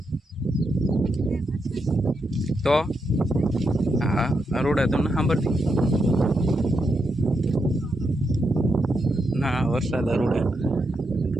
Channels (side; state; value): both; normal; correlation 0.83